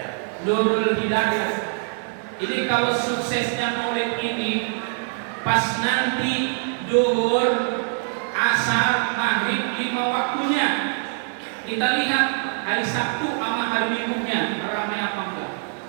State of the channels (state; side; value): silent; left; 63 dB below the other